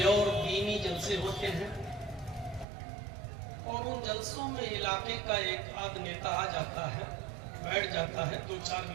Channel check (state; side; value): drops out; left; at 2.7 s